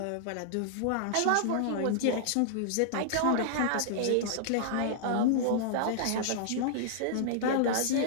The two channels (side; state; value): both; different; correlation -0.01